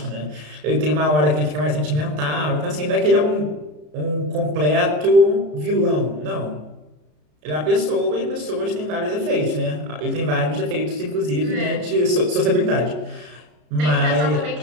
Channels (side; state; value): left; late; 33 ms